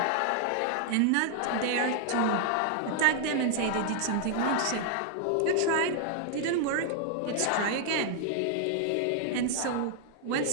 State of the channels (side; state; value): both; different; correlation 0.00